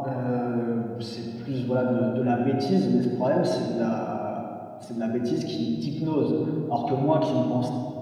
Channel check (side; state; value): both; identical; correlation 1.00